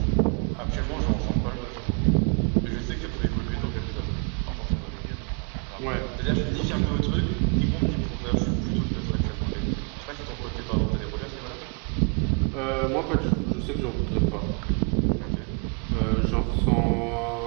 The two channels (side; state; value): left; quieter; 37.0 dB